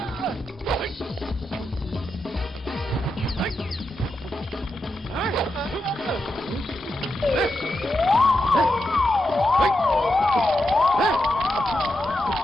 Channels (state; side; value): normal; both; correlation 0.87